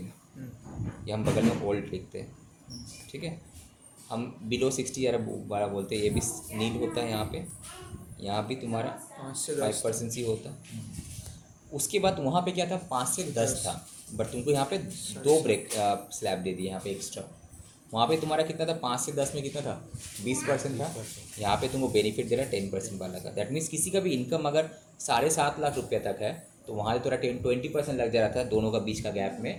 है। ये हम बगल में ओल्ड लिखते हैं, ठीक है। हम बिलो 60 या 12 बोलते हैं, ये भी नील होता है यहाँ पे, यहाँ भी तुम्हारा 5 से 10 5% ही होता। उसके बाद वहाँ पे क्या था 5 से 10 था, बट तुमको यहाँ पे 2 ब्रेक स्लैब दे दिए यहाँ पे एक्स्ट्रा। वहाँ पे तुम्हारा कितना था 5 से 10 में कितना था 20% था, यहाँ पे तुमको बेनिफिट दे रहा है 10% वाला का। दैट मीन्स किसी का भी इनकम अगर 7.5 लाख रुपये तक है तो वहाँ से थोड़ा 20% लग जा रहा था दोनों का बीच का गैप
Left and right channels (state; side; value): identical; both; correlation 1.00